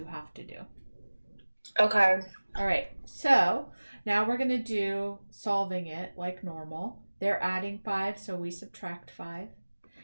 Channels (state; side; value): inverted; both; correlation -1.00